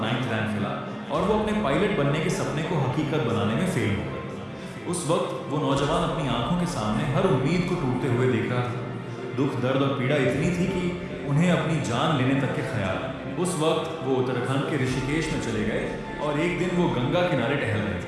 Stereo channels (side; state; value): both; identical; correlation 1.00